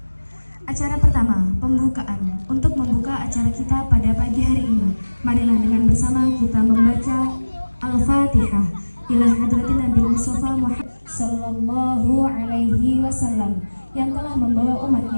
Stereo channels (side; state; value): both; inverted; correlation -1.00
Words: Acara pertama, pembukaan. Untuk membuka acara kita pada pagi hari ini, marilah dengan bersama kita membaca Al-Fatihah ila hadratin Nabi Mustafa Muhammad sallallahu alaihi wasallam yang telah membawa